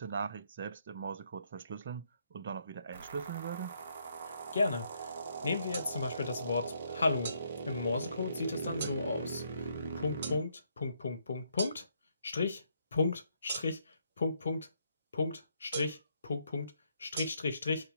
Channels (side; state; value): both; inverted; correlation -0.73